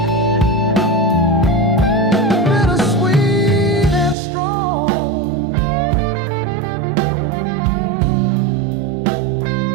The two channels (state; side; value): drops out; left; at 4.2 s